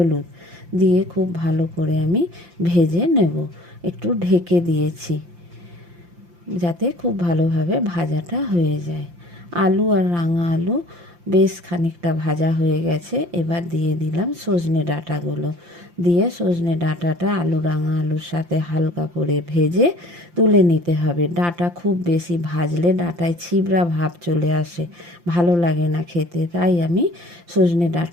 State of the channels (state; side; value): late; left; 5.8 ms